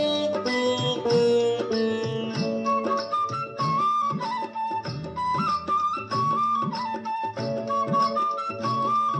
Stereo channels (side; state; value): both; identical; correlation 1.00